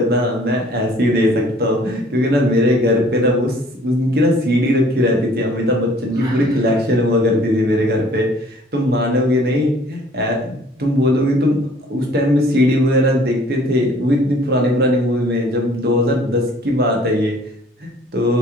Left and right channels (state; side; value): normal; both; correlation 0.55